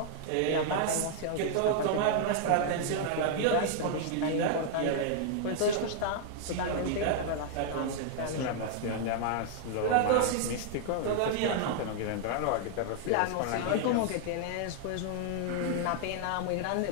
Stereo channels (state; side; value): different; both; correlation -0.01